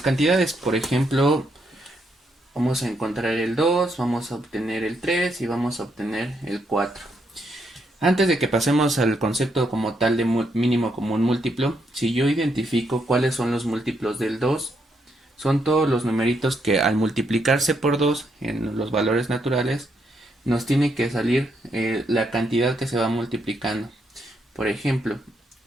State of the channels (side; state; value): both; normal; correlation 0.77